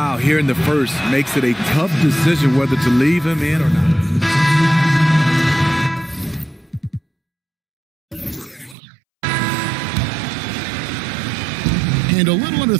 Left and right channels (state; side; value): drops out; left; at 8.8 s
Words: here in the first makes it a tough decision whether to leave him in or not. And a little under